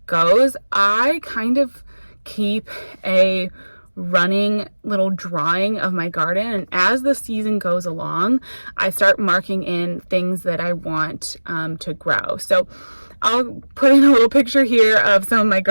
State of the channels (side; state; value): both; inverted; correlation -1.00